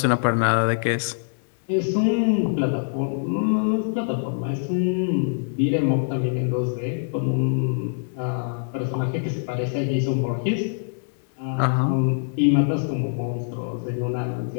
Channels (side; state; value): right; silent; digital silence